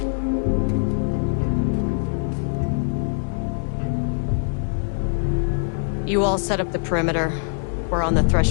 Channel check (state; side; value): silent; right; 64 dB below the other